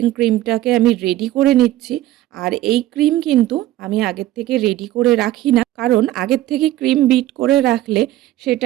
ক্রিমটাকে আমি রেডি করে নিচ্ছি। আর এই ক্রিম কিন্তু আমি আগের থেকে রেডি করে রাখি না, কারণ আগের থেকে ক্রিম বিট করে রাখলে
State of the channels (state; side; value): quieter; left; 14.7 dB